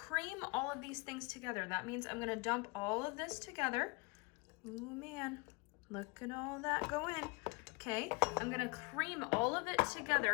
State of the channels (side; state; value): right; quieter; 28.9 dB